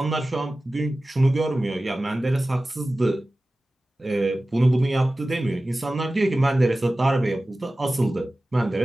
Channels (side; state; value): both; normal; correlation 0.96